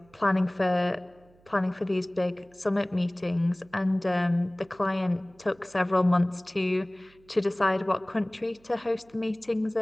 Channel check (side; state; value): right; noise; hum, 30 dB below the sound